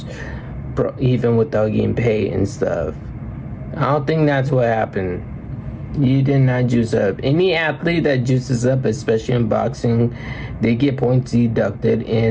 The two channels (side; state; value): both; identical; correlation 1.00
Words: even without getting paid and stuff. I don't think that's what happened. You did not juice up. Any athlete that juices up, especially in boxing, they get points deducted